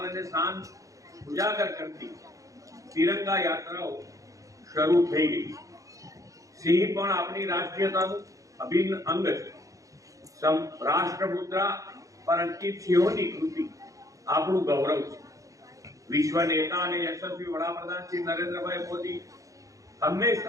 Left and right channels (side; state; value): left; late; 0.16 ms